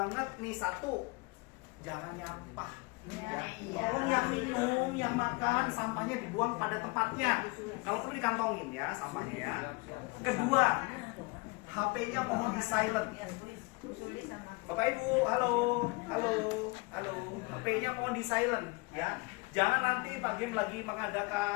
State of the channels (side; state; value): right; quieter; 27.1 dB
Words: nih, satu, jangan nyampah ya. Tolong yang minum, yang makan, sampahnya dibuang pada tempatnya. Kalau perlu dikantongin ya sampahnya ya. Kedua, HP-nya mohon di silent. Bapak Ibu, halo, HP-nya mohon di silent ya. Jangan nanti Pak Gem lagi